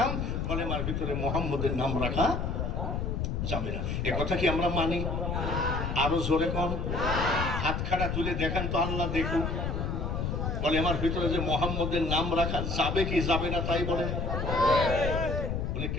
কলেমার ভিতরে মুহাম্মদের নাম রাখা যাবে না। এ কথা কি আমরা মানি? আরো জোরে কোন, হাত খাড়া তুলে দেখান তো, আল্লাহ দেখুক। কলেমার ভিতরে যে মুহাম্মদের নাম রাখা যাবে কি যাবে না তাই বলে? বলে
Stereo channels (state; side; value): noise; left; rumble, 1 dB below the sound